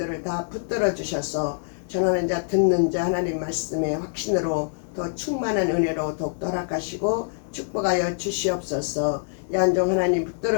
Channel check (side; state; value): right; silent; digital silence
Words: 다 붙들어 주셔서 전하는 자 듣는 자 하나님 말씀의 확신으로 더 충만한 은혜로 더욱더 허락하시고 축복하여 주시옵소서. 양종 하나님